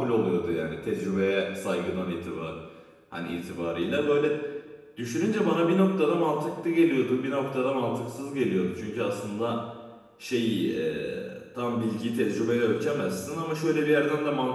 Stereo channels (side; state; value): both; identical; correlation 1.00